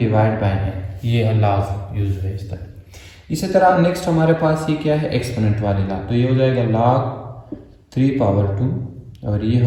बाई एन, ये लाज यूज है इस तरह। इसी तरह नेक्स्ट हमारे पास ये क्या है, एक्सपोनेंट वाली ला, तो ये हो जाएगा log 3 पावर 2, और ये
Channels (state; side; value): identical; both; correlation 1.00